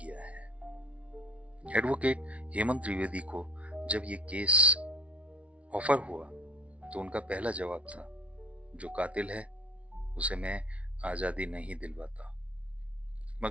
है। एडवोकेट हेमंत त्रिवेदी को जब ये केस ऑफर हुआ तो उनका पहला जवाब था, जो कातिल है उसे मैं आजादी नहीं दिलवाता।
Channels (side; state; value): left; late; 0.063 ms